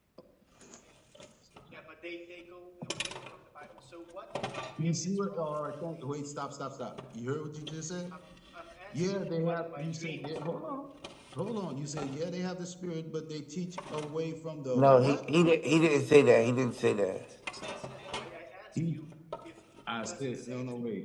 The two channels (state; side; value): identical; both; correlation 1.00